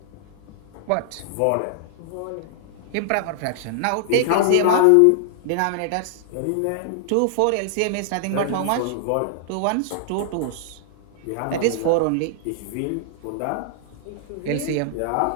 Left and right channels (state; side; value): different; both; correlation -0.01